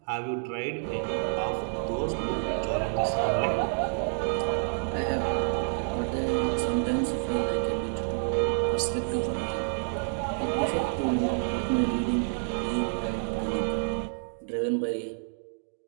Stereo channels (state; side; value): silent; left; digital silence